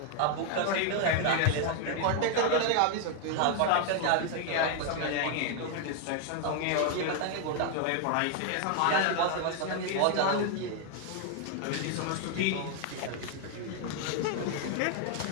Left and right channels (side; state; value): both; different; correlation 0.00